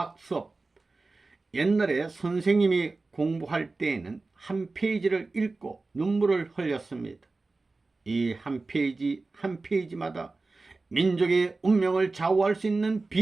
옛날에 선생님이 공부할 때에는 한 페이지를 읽고 눈물을 흘렸습니다. 이 한 페이지 한 페이지마다 민족의 운명을 좌우할 수 있는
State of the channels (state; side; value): quieter; left; 3.6 dB